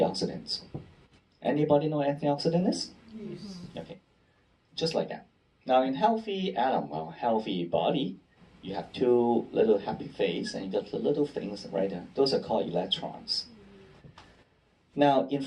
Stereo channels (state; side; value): identical; both; correlation 1.00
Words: Anybody know what antioxidant is? Yes. Okay, just like that. Now in healthy healthy body, you have two little happy face, and you got the little things right there. Those are called electrons. Now, in